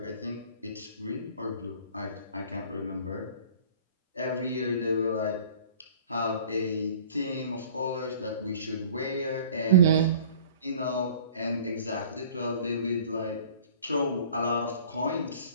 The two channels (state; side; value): inverted; both; correlation -0.48